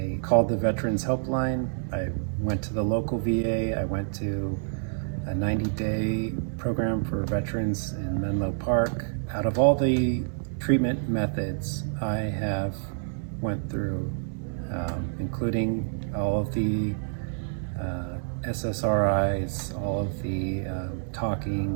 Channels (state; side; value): silent; left; digital silence